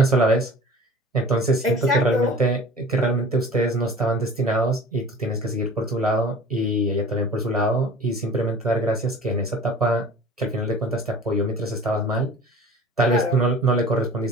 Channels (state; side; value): normal; both; correlation 0.43